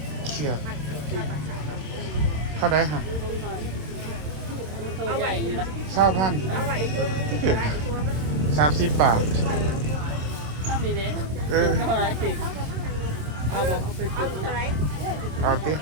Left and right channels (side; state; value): left; late; 27 ms